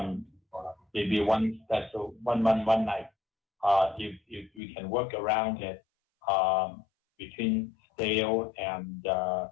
maybe one special one night. If we can work around it between Dale and our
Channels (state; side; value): drops out; right; at 4.6 s